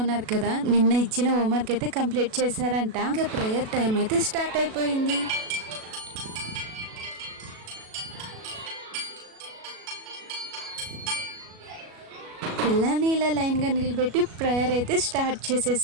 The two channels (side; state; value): left; late; 37 ms